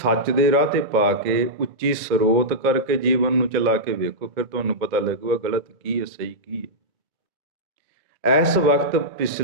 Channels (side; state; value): left; late; 2.1 ms